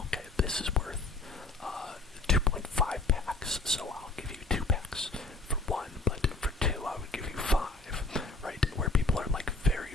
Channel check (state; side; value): quieter; right; 3.3 dB